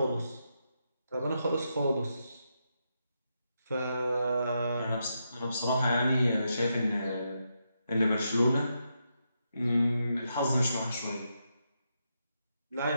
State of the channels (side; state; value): both; inverted; correlation -0.83